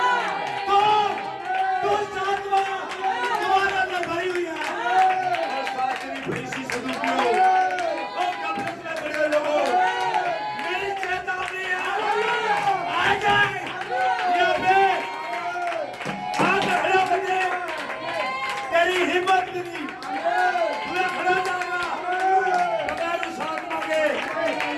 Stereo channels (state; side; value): identical; both; correlation 1.00